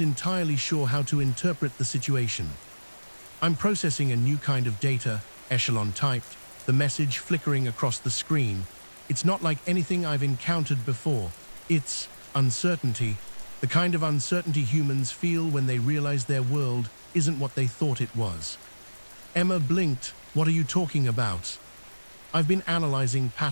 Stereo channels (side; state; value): both; inverted; correlation -1.00